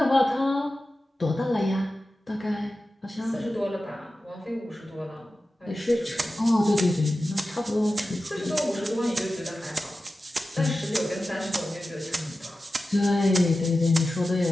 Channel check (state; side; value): normal; both; correlation 0.94